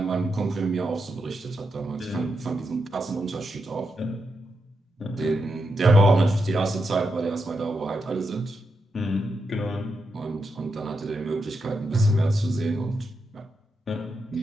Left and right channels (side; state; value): both; normal; correlation 0.85